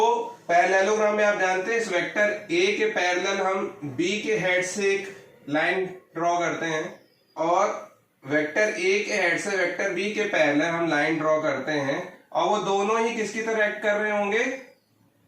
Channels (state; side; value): identical; both; correlation 1.00